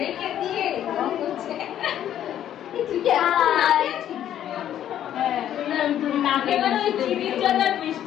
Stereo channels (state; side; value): quieter; right; 10.9 dB